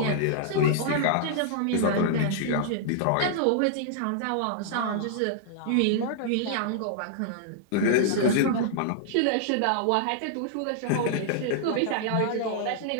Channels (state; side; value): different; both; correlation -0.01